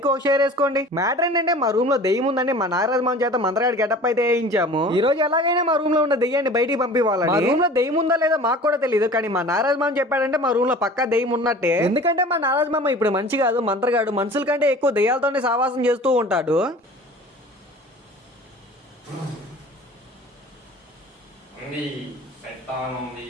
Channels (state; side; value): normal; both; correlation 0.42